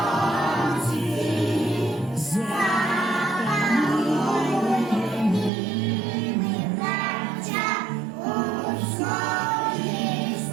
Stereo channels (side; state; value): left; drops out; at 5.5 s